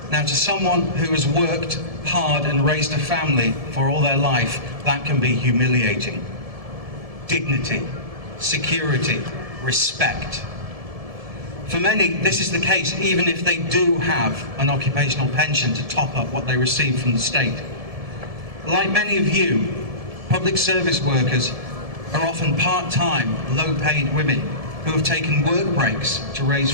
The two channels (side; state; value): left; late; 1.7 ms